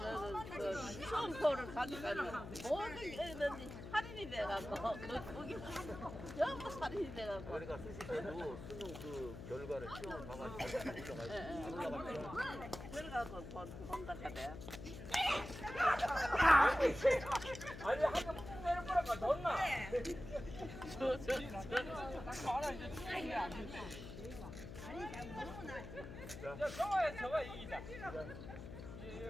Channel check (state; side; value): noise; left; hum, 10 dB below the sound